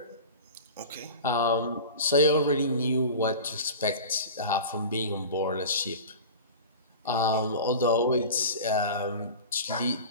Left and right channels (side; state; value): both; inverted; correlation -0.33